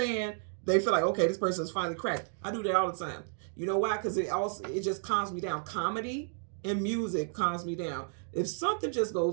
they feel like, okay, this person's finally cracked. I do that all the time. You know why? Because it just calms me down. Comedy and music calms me down. If something just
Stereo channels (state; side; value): silent; left; 56 dB below the other